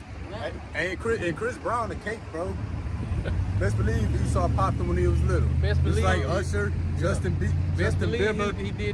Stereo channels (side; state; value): both; identical; correlation 1.00